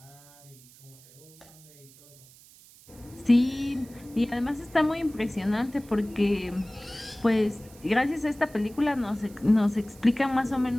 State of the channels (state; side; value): noise; right; hiss, 24 dB below the sound